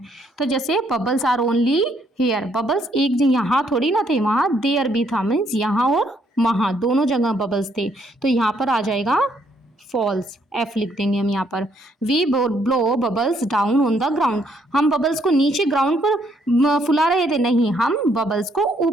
तो जैसे bubbles are only here, bubbles एक यहाँ थोड़ी ना थे, वहाँ देयर भी था, मीन्स यहाँ और वहाँ दोनों जगह बबल्स थे, तो यहाँ पर आ जाएगा फॉल्स, एफ लिख देंगे हम यहाँ पर। We blow bubbles down on the ground, हम बबल्स को नीचे ग्राउंड पर फुला रहे थे, नहीं हम बबल्स को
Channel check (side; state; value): both; normal; correlation 0.70